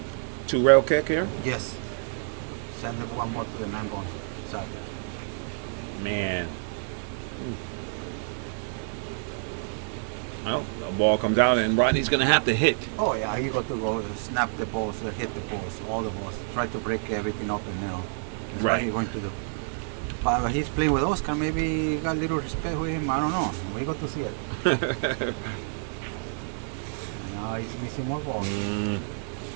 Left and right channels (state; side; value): silent; left; 56 dB below the other